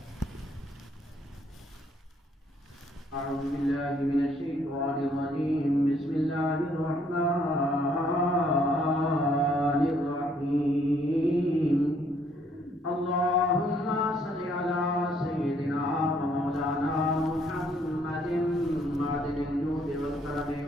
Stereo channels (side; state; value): both; normal; correlation 0.66